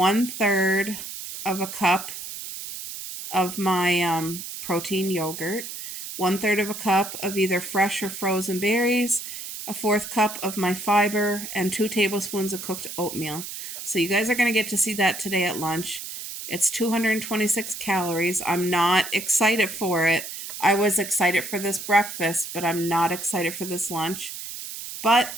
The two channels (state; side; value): noise; right; hiss, 9 dB below the sound